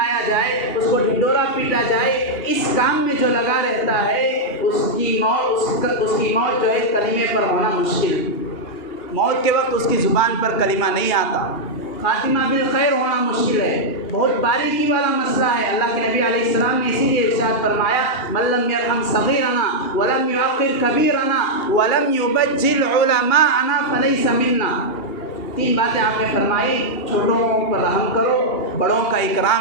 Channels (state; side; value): late; right; 2.8 ms